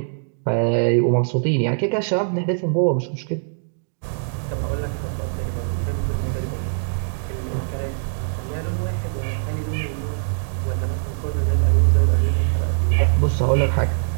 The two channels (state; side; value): silent; left; digital silence